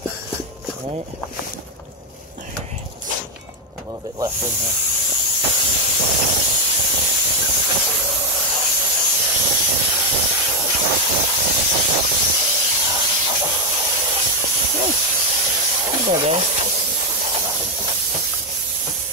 Alright. A little bit left in here.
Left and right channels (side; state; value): both; normal; correlation 0.02